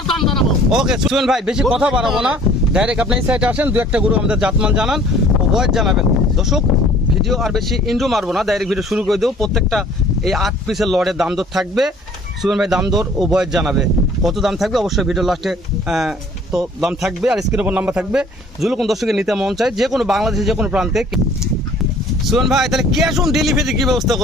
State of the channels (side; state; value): both; normal; correlation 0.53